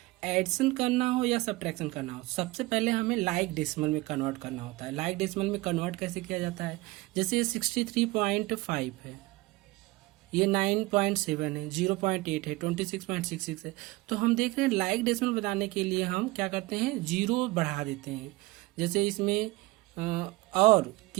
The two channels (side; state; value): left; quieter; 21.0 dB